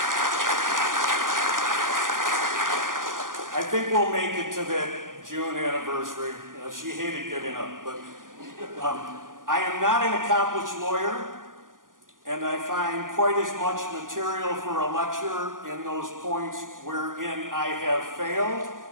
I think we'll make it to that June anniversary. She hated getting up, but I am not an accomplished lawyer, and I find quite as much material for a lecture in those points wherein I have failed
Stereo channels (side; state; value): left; late; 0.89 ms